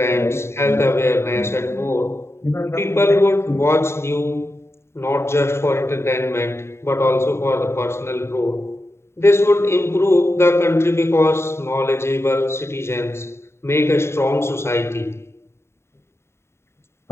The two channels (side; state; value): right; late; 0.13 ms